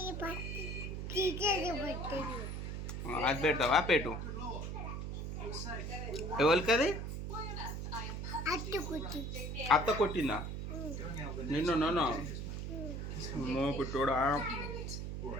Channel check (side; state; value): right; noise; hum, 4 dB below the sound